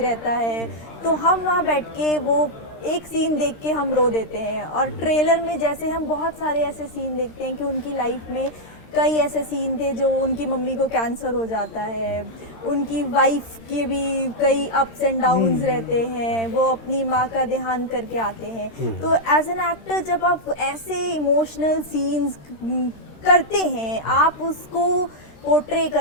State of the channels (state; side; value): late; right; 13 ms